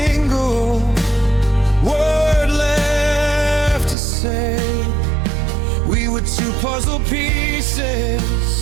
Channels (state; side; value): drops out; left; at 4.0 s